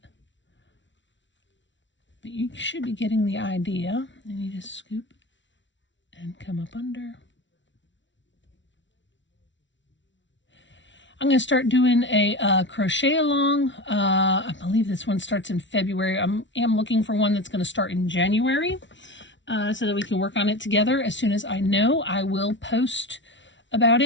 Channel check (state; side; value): late; right; 0.54 ms